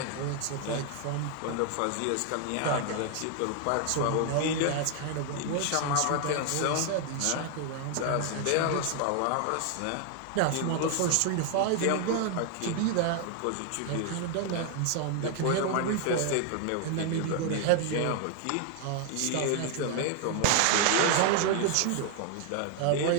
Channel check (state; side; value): different; both; correlation 0.00